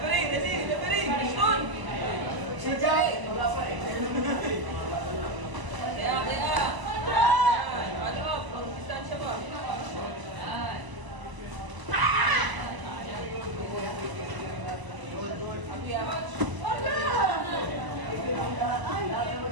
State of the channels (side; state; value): left; late; 1.0 ms